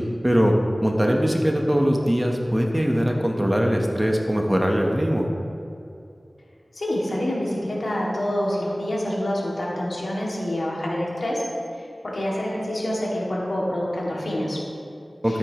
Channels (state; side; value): normal; both; correlation 0.98